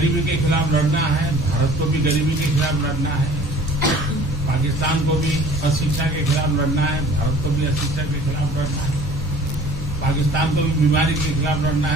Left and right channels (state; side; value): normal; both; correlation 0.48